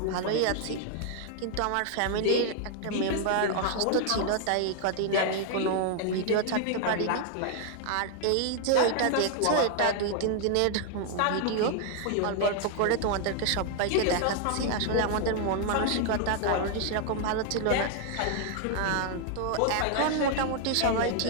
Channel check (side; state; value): both; different; correlation 0.00